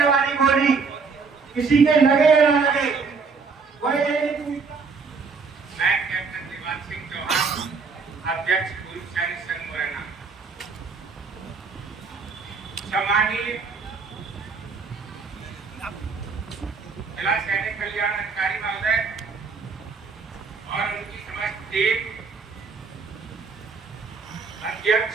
वाली गोली किसी के लगे या ना लगे। मैं कैप्टन दिवान सिंह चौहान, अध्यक्ष पूर्व सैनिक संघ मुरैना। सम्मानीय जिला सैनिक कल्याण अधिकारी महोदय और उनकी समस्त टीम,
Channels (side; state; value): left; quieter; 4.9 dB